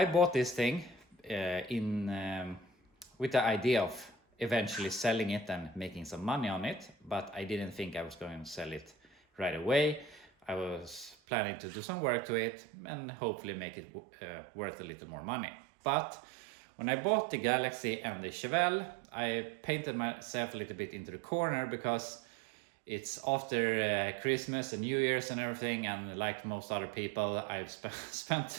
bought this thing with the idea of eventually selling it and making some money on it, but I didn't think I was going to sell it right away. I was planning to do some work to it and hopefully make it worth a little more money. But when I bought the Galaxie and the Chevelle, I painted myself a little bit into the corner because it's after Christmas and New Year's and everything, and like most other people, I've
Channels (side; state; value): left; drops out; at 11.2 s